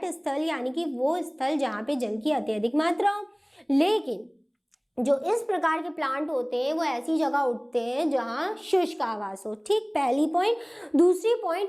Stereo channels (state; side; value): identical; both; correlation 1.00